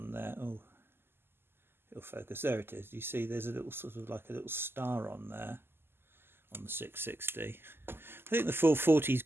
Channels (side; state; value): left; late; 0.11 ms